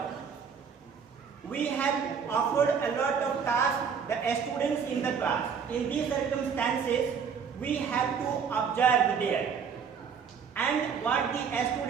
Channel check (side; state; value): left; quieter; 6.6 dB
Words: We have offered a lot of tasks the students in the class. In these circumstances, we have to observe there. And what the